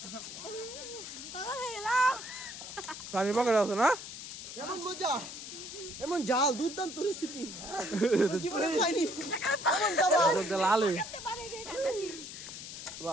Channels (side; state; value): left; noise; hiss, 10 dB below the sound